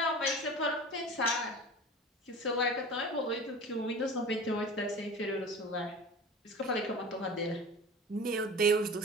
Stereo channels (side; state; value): both; normal; correlation 0.37